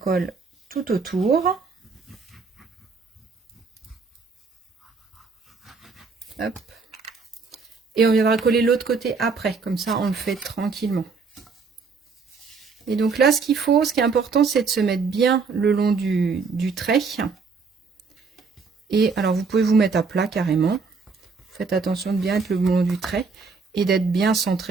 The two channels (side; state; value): left; quieter; 4.8 dB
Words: tout autour. Hop. Et on viendra coller l'autre côté après. Comme ça, on le fait tranquillement. Et donc là, ce qu'il faut, ce qui est important, c'est de se mettre bien le long du trait. Et alors, vous pouvez vous mettre à plat carrément. Faites attention de bien être le long du trait et d'être bien